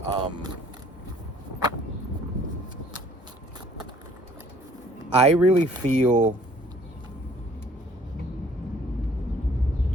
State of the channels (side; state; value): both; normal; correlation 0.57